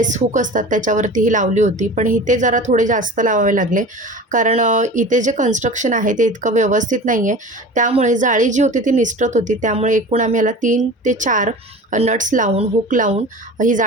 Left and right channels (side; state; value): both; normal; correlation 0.36